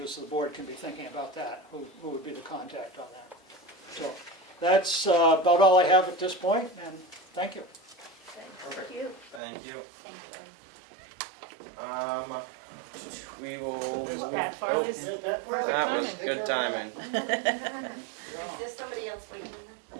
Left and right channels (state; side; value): drops out; left; at 9.4 s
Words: so the board can be thinking about that, who would be the contact on that. So that's about all I have at this point, and thank you. Perfect. Thank you. Thank you. Thank you. We will. Pat Farley's. That was good timing. Is there somebody else waiting?